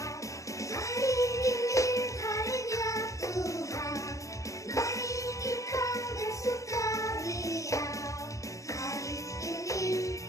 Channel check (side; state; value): right; late; 0.15 ms